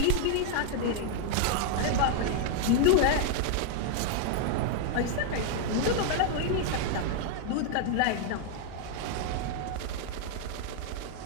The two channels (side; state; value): both; different; correlation 0.00